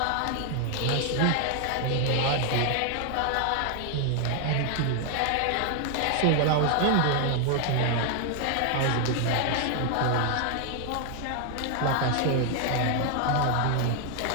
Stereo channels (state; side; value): different; both; correlation 0.00